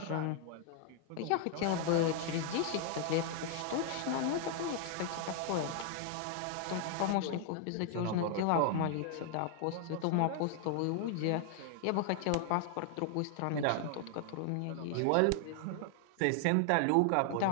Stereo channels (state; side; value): different; both; correlation 0.00